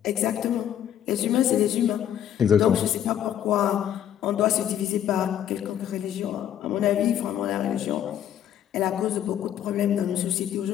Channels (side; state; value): right; quieter; 10.4 dB